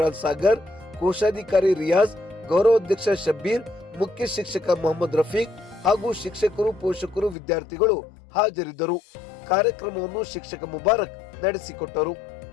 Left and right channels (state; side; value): drops out; right; at 7.4 s